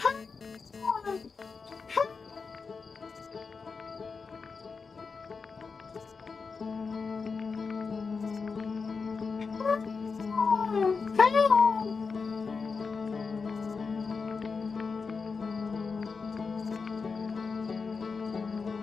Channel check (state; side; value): quieter; right; 4.9 dB